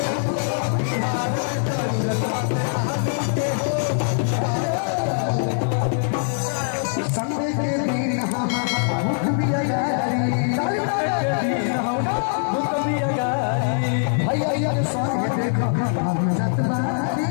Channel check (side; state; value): right; silent; digital silence